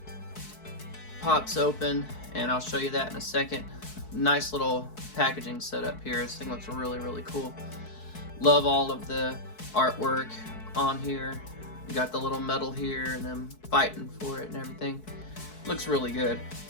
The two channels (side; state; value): right; late; 4.6 ms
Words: Pops open, and I'll show you that in a second. Nice little packaging setup here. This thing looks really cool. Love all of the artwork on here. You got the little medal here and them fighting for it and everything. Looks really good.